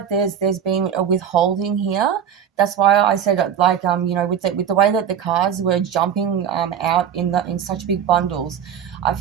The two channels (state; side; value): quieter; left; 8.7 dB